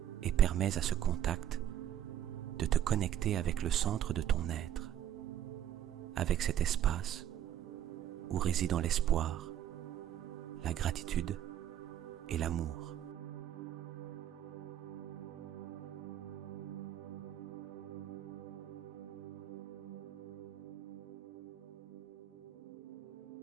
et permets à ce contact de te connecter avec le centre de ton être, avec cet espace où résident l'espoir, la gratitude et l'amour.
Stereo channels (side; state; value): left; quieter; 10.9 dB